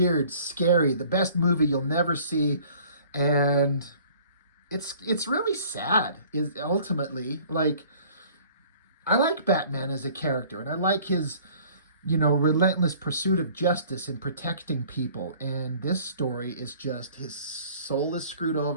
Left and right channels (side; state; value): both; inverted; correlation -0.53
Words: scary, the best movie you'll never see. And it's really sad, is ultimately. Like, I like Batman as a character, and I like his, relentless pursuit of justice and protecting people. And this story is just, his soul is screwed